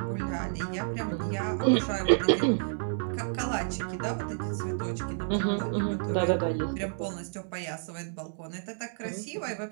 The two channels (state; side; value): silent; left; digital silence